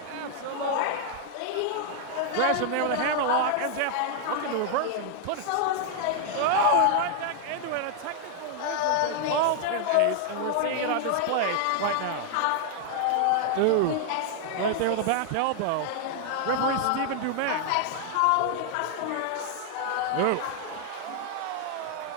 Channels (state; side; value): different; both; correlation 0.00